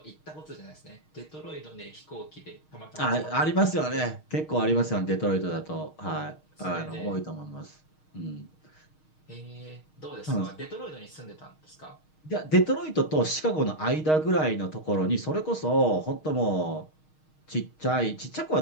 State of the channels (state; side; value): late; right; 6.4 ms